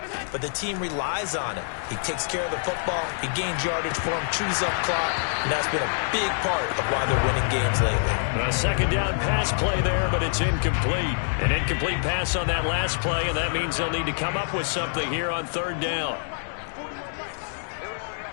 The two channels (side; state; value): right; silent; 61 dB below the other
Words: but the team relies on it. He takes care of the football, he gains yardage for him, chews up clock, and that's been a big part of why they're winning games lately. A second down pass play there, but it's incomplete. An incomplete pass on that last play, and that means they'll need to come up with something here on third down.